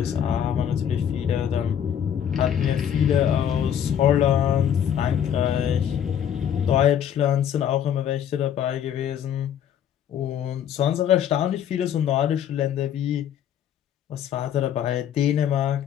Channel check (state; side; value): quieter; right; 9.3 dB